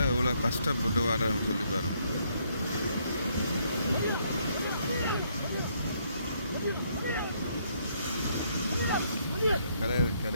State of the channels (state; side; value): inverted; both; correlation -0.71